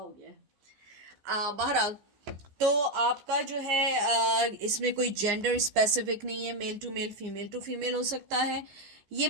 गया है। बहरहाल, तो आपका जो है इसमें कोई जेंडर स्पेसिफिक नहीं है, मेल टू फीमेल हो सकता है। ये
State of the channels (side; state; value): left; late; 15 ms